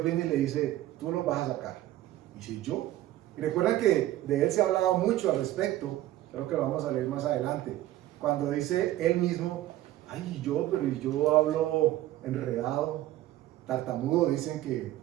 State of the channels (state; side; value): quieter; left; 14.7 dB